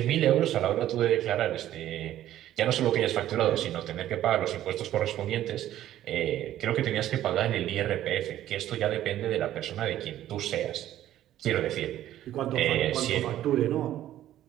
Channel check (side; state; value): left; quieter; 12.7 dB